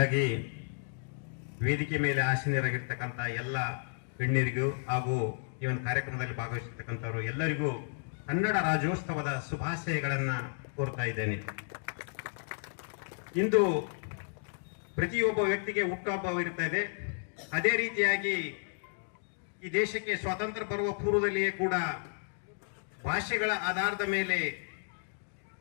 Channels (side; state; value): right; silent; digital silence